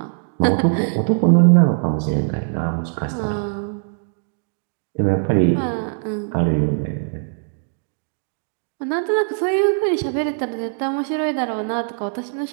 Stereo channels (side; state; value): left; silent; 62 dB below the other